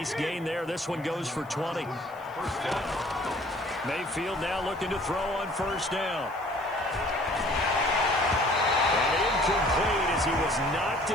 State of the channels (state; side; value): noise; right; hiss, 27 dB below the sound